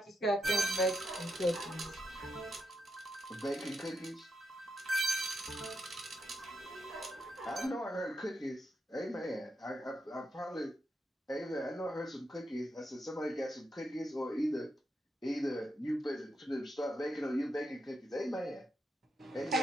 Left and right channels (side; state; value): both; normal; correlation 0.84